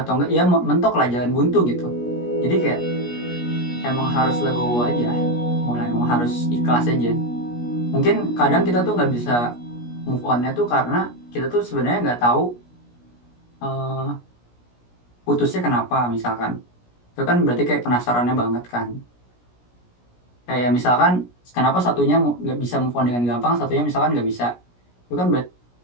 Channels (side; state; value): right; late; 17 ms